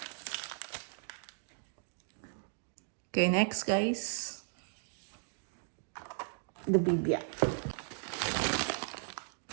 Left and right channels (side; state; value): left; silent; digital silence